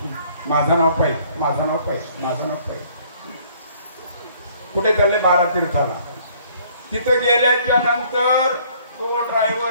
माझं नाव पाहिजे, माझं नाव पाहिजे, माझं नाव पाहिजे. कुठे चालले? 12 तीर्थाला. तिथं गेल्याच्या नंतर तो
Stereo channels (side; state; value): both; inverted; correlation -0.60